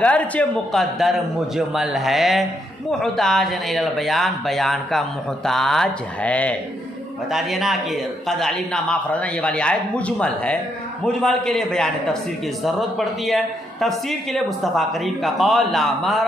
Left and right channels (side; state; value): both; normal; correlation 0.76